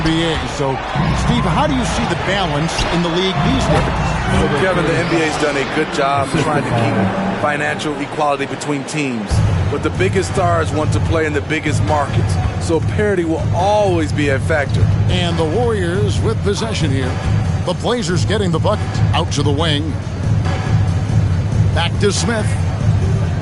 So, Steve, how do you see the balance in the league these days? So, Kevin, the NBA's done a good job trying to keep financial equality between teams. But the biggest stars want to play in the biggest markets. So parity will always be a factor. And the Warriors with possession here. The Blazers getting the bucket. Out to the wing. Back to Smith.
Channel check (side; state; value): both; identical; correlation 1.00